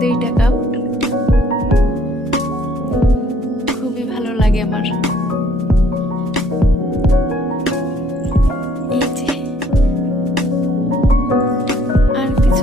কাপ, খুবই ভালো লাগে আমার। এই যে আর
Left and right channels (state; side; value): normal; both; correlation 0.61